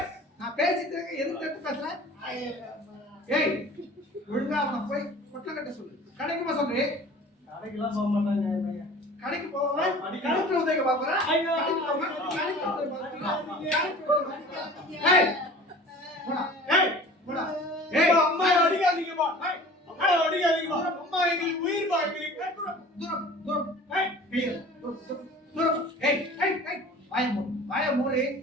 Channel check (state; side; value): normal; both; correlation 0.44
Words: நான் பேசிட்டு இருக்க எதுக்கு தட்டு பேசுறேன்? ஏய் ஒழுங்கா அவனை போய் பொட்டலம் கட்ட சொல்லு. கடைக்கு போக சொல்றே. கடைக்கெல்லாம் போக மாட்டாங்க என் பையன். கடைக்கு போவேன். கடைக்கு உதவி பாக்குறேன். ஏய் போடா. ஏய் போடா. ஏய் அம்மா அடிக்காதீங்கப்பா. அம்மா அடிக்காதீங்கப்பா. அம்மா எங்களுக்கு உயிர் பாக்குறீங்க. தூரம் தூரம். ஏய் தூரம். ஏய் ஏய் ஏய் வாய